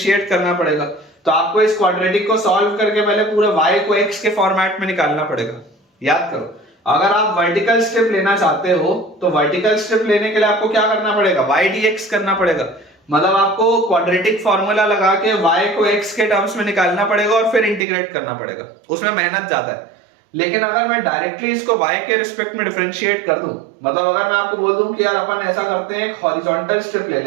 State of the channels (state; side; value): drops out; left; at 17.8 s